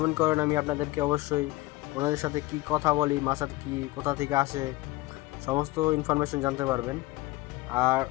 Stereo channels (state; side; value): quieter; right; 19.6 dB